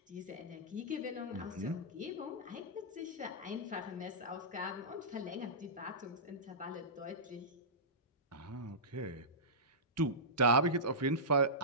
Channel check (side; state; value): both; normal; correlation -0.17